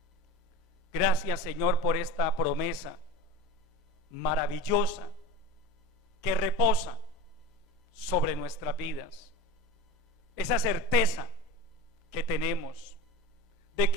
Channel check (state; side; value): normal; both; correlation 0.32